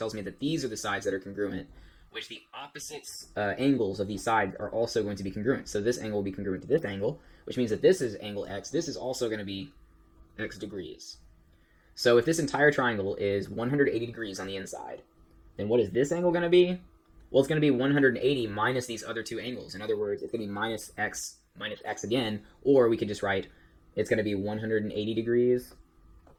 me that these are the sides that are congruent, which the opposite angles of these sides are also going to be congruent. So this angle will be congruent to this angle, which means that this is angle X. This is also going to be X degrees. So if this entire triangle is 180 degrees on the inside, then what is this angle going to be? Well, it's going to be 180 minus these other two angles. In other words, it's going to be minus X again, or we could just write it's going to be 180 degrees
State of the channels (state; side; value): identical; both; correlation 1.00